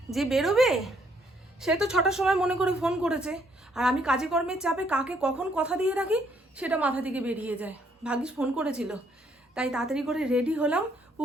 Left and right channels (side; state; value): both; normal; correlation 0.69